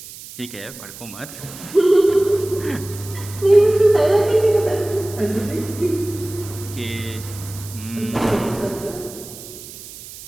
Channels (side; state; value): right; noise; hiss, 15 dB below the sound